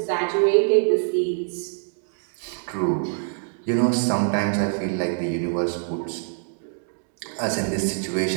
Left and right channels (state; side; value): silent; left; 62 dB below the other